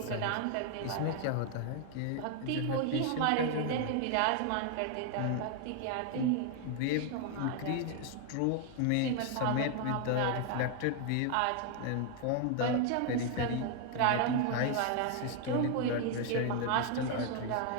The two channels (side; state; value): both; different; correlation 0.00